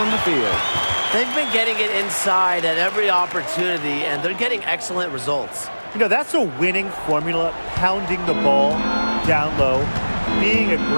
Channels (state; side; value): inverted; both; correlation -1.00